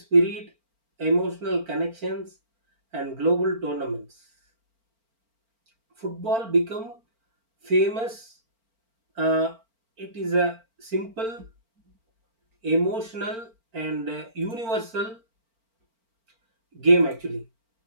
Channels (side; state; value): left; late; 4.4 ms